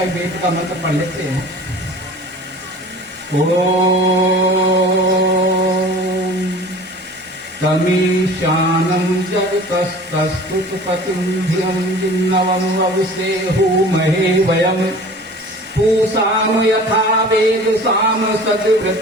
वेद का मंत्र पढ़ लेते हैं। ओम तमीशानं जगतस्तस्तुतपतिं धियं जिन्नवं वविसेहुमहे वयं पूषाम यथा वेदसाम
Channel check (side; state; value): both; normal; correlation 0.43